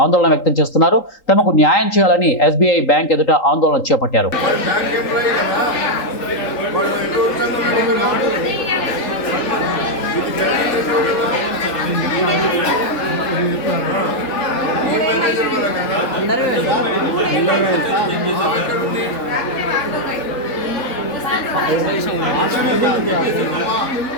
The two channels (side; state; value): right; late; 3.8 ms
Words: ఆందోళన వ్యక్తం చేస్తున్నారు. తమకు న్యాయం చేయాలని SBI బ్యాంక్ ఎదుట ఆందోళన చేపట్టారు.